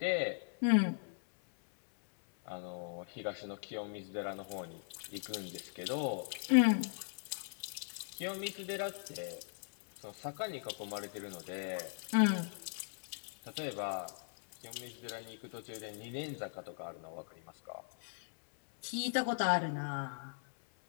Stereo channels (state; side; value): silent; right; 52 dB below the other